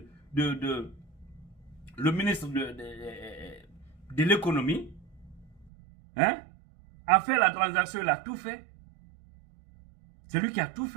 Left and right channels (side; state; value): left; drops out; at 5.7 s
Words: le ministre de l'économie, hein, a fait la transaction, il a tout fait. C'est lui qui a tout